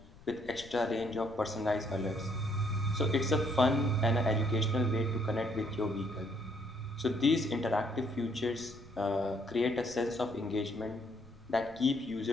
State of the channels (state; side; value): noise; left; rumble, 23 dB below the sound